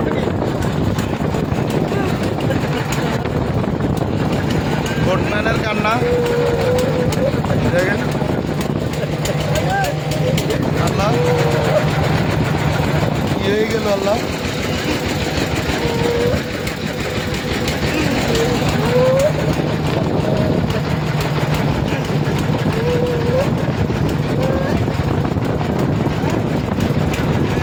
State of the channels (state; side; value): identical; both; correlation 1.00